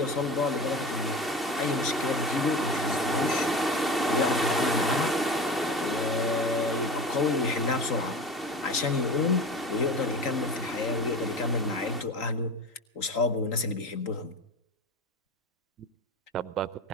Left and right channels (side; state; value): both; normal; correlation 0.32